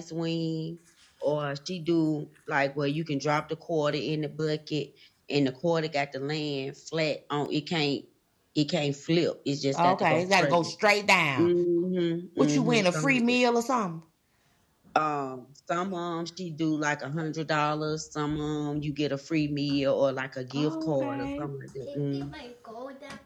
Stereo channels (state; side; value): identical; both; correlation 1.00